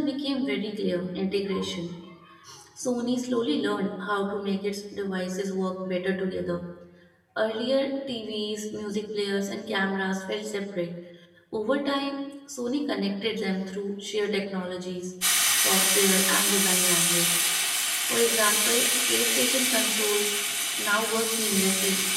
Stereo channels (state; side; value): identical; both; correlation 1.00